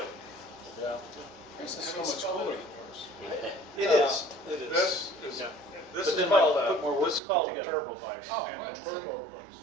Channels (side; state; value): left; drops out; at 7.2 s